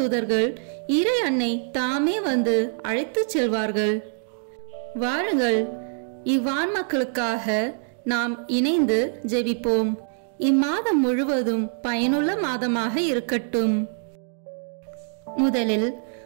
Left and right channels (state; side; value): silent; left; digital silence